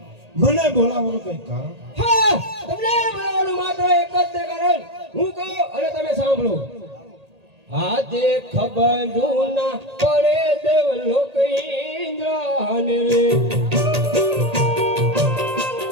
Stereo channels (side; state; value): left; late; 1.8 ms